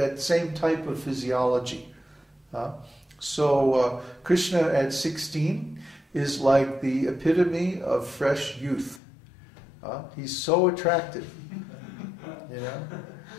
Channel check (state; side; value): drops out; right; at 9.0 s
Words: same type of physiology. So Krishna at 16 is like the epitome of fresh youth. He's so attractive. You know?